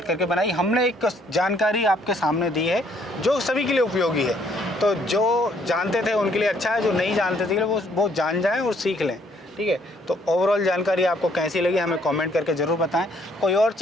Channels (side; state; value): both; normal; correlation 0.66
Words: करके बनाई। हमने एक जानकारी आपके सामने दी है जो सभी के लिए उपयोगी है। तो जो जानते थे उनके लिए अच्छा है, जो नहीं जानते थे वो जान जाएं और सीख लें। ठीक है, तो ओवरऑल जानकारी आपको कैसी लगी हमें कमेंट करके ज़रूर बताएं। कोई और